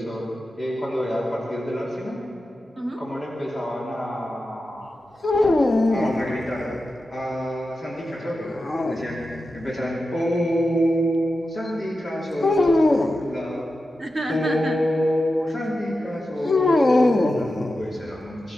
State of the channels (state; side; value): normal; both; correlation 0.91